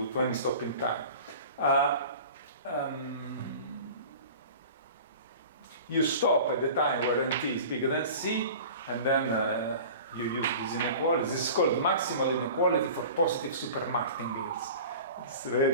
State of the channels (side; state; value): both; inverted; correlation -0.39